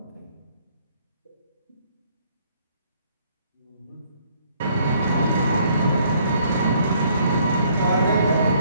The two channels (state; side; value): inverted; both; correlation -0.65